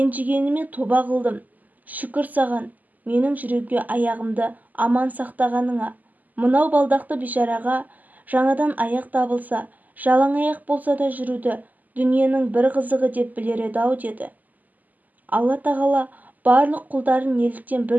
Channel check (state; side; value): late; left; 0.081 ms